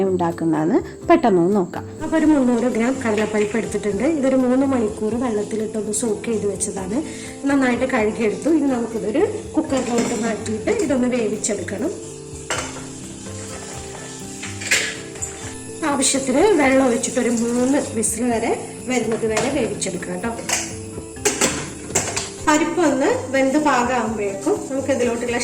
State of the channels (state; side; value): identical; both; correlation 1.00